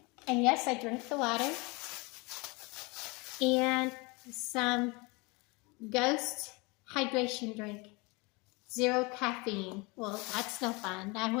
And yes, I drink the water. And some Ghost hydration drink. 0 caffeine. Well, that's no fun. I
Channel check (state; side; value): quieter; right; 27.3 dB